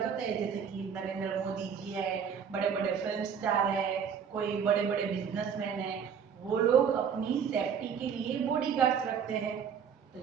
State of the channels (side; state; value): left; quieter; 7.2 dB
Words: होते हैं, जैसे कि नरेंद्र मोदी जी है, बड़े बड़े फिल्म स्टार है, कोई बड़े बड़े बिजनेसमैन है, वो लोग अपनी सेफ्टी के लिए बॉडी गार्ड्स रखते हैं। तो